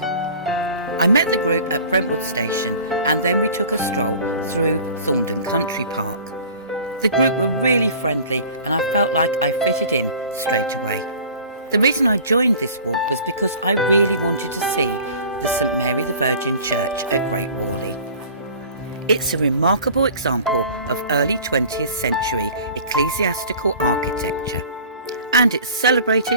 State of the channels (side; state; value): both; inverted; correlation -0.44